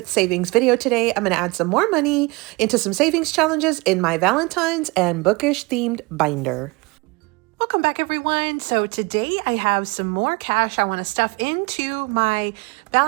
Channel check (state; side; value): quieter; left; 25.6 dB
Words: savings video today. I'm going to add some more money into some savings challenges in my Valentines and Bookish themed binder. Welcome back everyone. So today I have some more cash I want to stuff into my